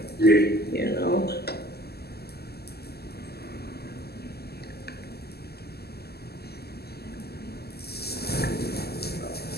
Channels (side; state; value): right; late; 0.46 ms